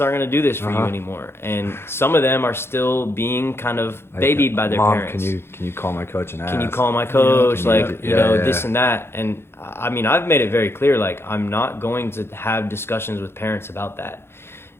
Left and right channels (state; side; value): late; right; 0.12 ms